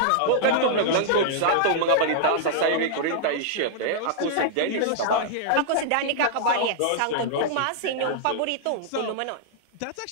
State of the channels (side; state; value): both; different; correlation -0.01